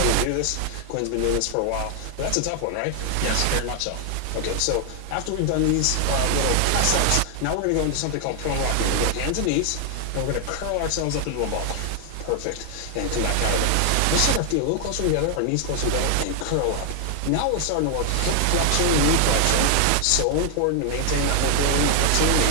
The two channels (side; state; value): both; different; correlation 0.00